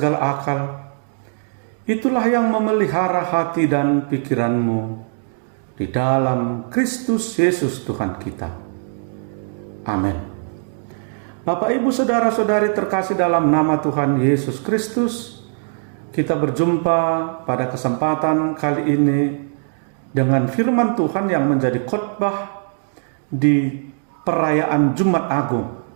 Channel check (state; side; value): silent; left; digital silence